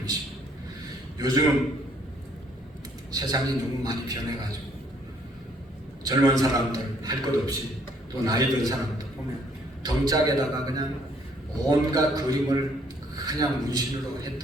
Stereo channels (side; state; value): both; normal; correlation 0.65